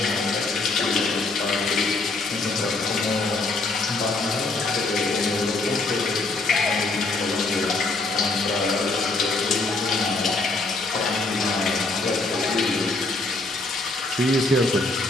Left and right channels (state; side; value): quieter; right; 3.3 dB